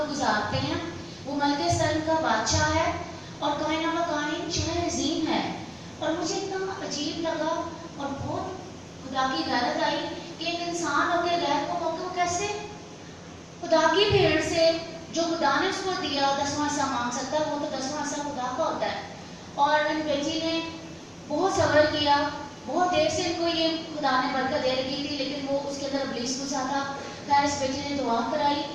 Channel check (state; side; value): identical; both; correlation 1.00